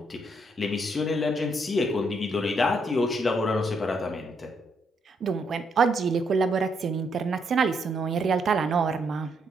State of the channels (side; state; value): both; normal; correlation 0.75